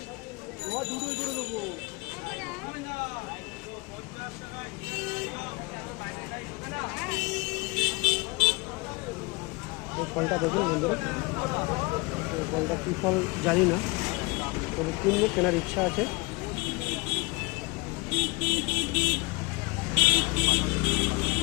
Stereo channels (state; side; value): quieter; right; 25.8 dB